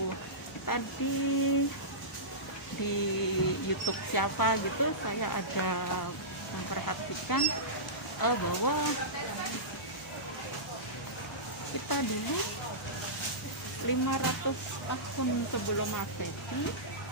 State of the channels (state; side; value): normal; both; correlation -0.18